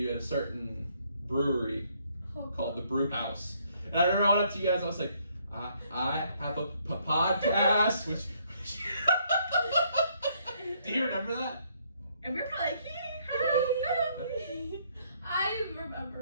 at a certain brewery called the Brew House, and I remember I went up to you guys. I was like, I have a podcast. Which do you remember that? And we're probably like, I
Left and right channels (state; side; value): inverted; both; correlation -0.69